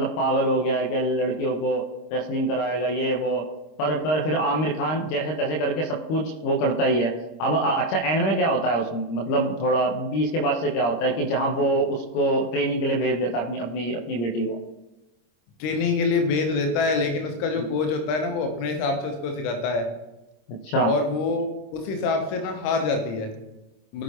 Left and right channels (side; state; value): right; late; 26 ms